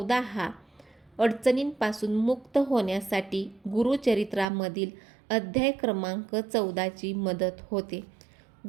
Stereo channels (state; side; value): drops out; left; at 4.5 s